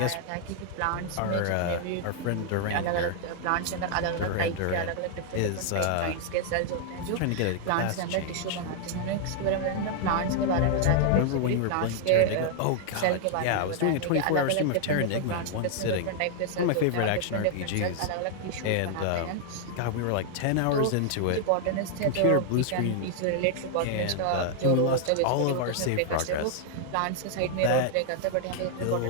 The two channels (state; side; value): different; both; correlation 0.00